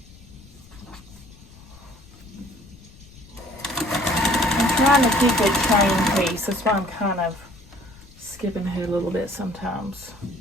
I'm trying to keep a chain piece. That's why I'm kind of skipping ahead a little bit sometimes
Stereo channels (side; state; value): left; noise; rumble, 22 dB below the sound